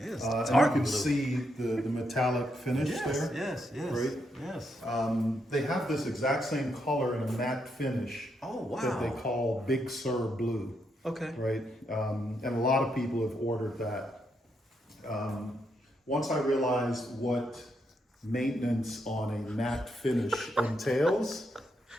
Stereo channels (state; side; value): normal; both; correlation 0.79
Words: and you can see the metallic finish there. Yes. Right? Yes. They have this exact same color in a matte finish. Oh, wow. That they call Big Sur Blue. Okay. Right? And a lot of people have ordered that. Once I realized what maintenance on a matte finish entails,